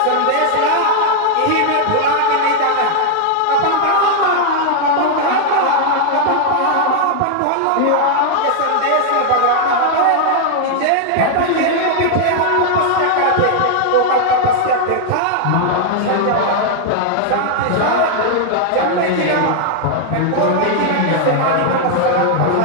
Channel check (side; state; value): both; different; correlation 0.00